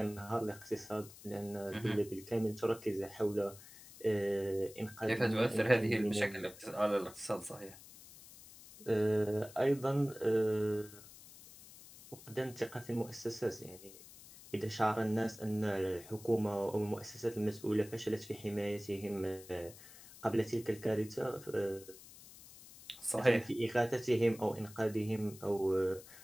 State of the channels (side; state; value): left; noise; hiss, 18 dB below the sound